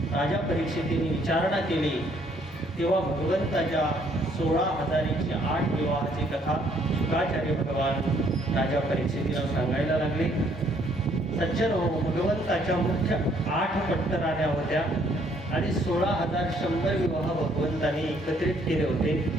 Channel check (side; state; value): both; normal; correlation 0.65